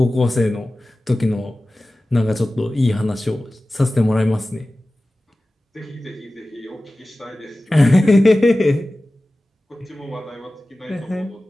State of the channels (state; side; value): normal; both; correlation 0.96